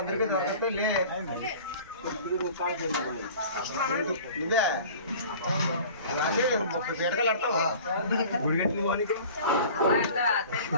దొరకతే లే నువ్వే పేటకలు ఆడతావా గుడిగట్టి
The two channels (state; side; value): inverted; both; correlation -0.44